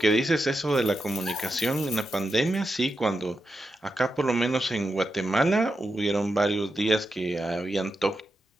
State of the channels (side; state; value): both; normal; correlation 0.87